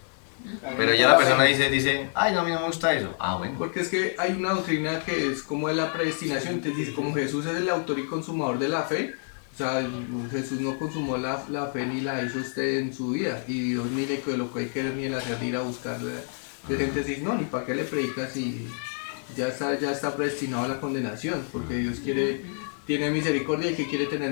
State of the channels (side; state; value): right; silent; 60 dB below the other